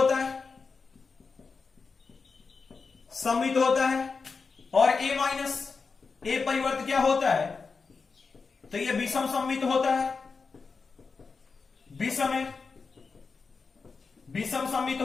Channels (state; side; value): quieter; right; 4.8 dB